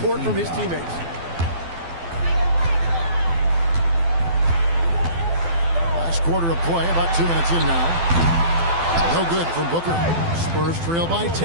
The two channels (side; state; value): left; late; 12 ms